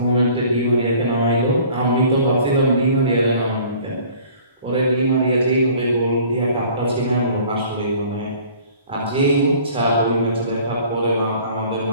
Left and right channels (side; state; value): both; inverted; correlation -0.51